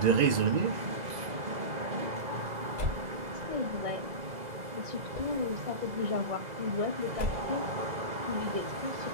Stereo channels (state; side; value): late; left; 2.0 ms